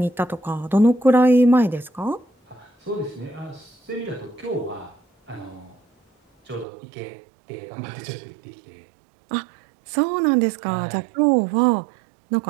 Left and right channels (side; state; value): left; drops out; at 6.7 s